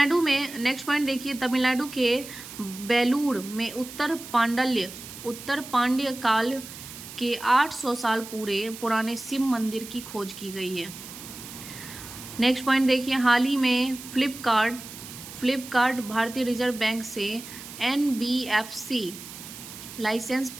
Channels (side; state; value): right; noise; hiss, 13 dB below the sound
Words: में नेक्स्ट पॉइंट देखिए, तमिलनाडु के बेलूर में उत्तर पांड्य काल के 800 साल पुराने शिव मंदिर की खोज की गई है। नेक्स्ट पॉइंट देखिए, हाल ही में फ्लिपकार्ट भारतीय रिजर्व बैंक से NBFC लाइसेंस